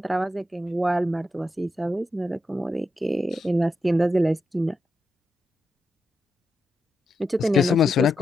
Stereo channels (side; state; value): both; normal; correlation 0.86